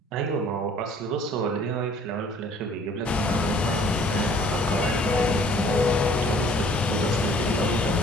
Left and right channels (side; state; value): both; normal; correlation 0.55